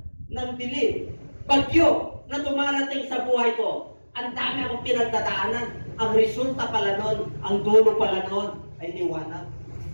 ng dilim, bagyo na dumarating sa buhay ko, ang dami akong pinagdadaanan. Ang resulta pala nun, ang dulo pala nun, ay liwanag.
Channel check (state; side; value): inverted; both; correlation -1.00